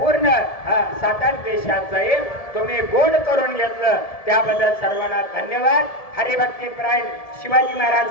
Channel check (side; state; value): right; late; 1.7 ms